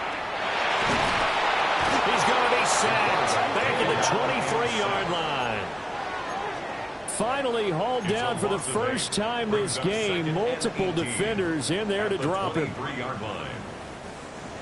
He's going to be sacked back at the 23-yard line. Finally hauled down for the first time this game. Multiple defenders in there to drop him.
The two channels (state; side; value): identical; both; correlation 1.00